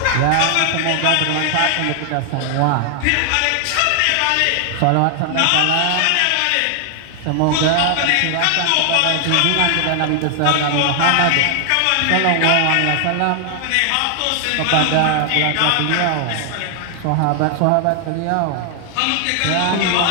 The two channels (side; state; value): both; different; correlation 0.00